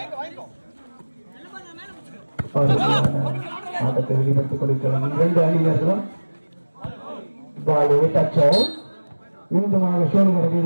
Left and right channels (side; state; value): both; inverted; correlation -1.00